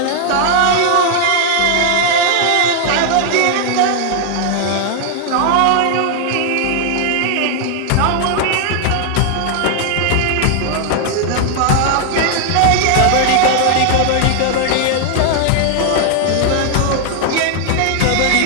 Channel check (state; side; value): different; both; correlation 0.00